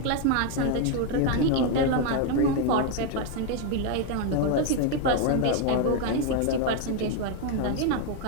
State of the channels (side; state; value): both; different; correlation 0.01